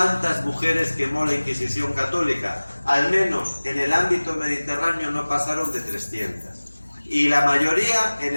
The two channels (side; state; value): both; inverted; correlation -1.00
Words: mujeres quemó la Inquisición católica? Al menos en el ámbito mediterráneo no pasaron de 300. Y la mayoría